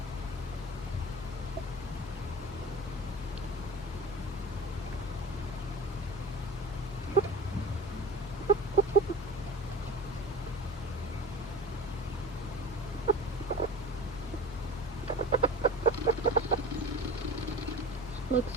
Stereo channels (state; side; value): normal; both; correlation 0.35